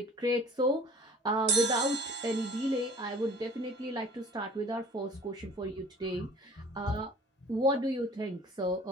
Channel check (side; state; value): both; normal; correlation 0.49